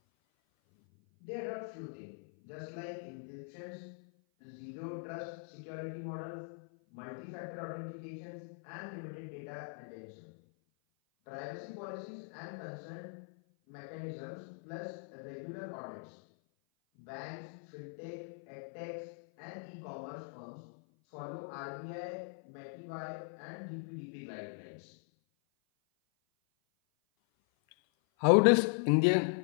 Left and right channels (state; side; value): silent; right; 51 dB below the other